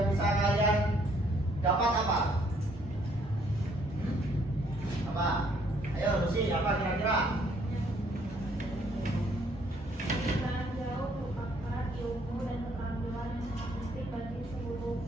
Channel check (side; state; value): both; normal; correlation 0.66